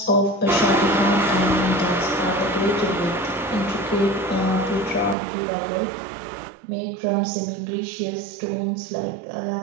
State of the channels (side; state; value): left; drops out; at 5.2 s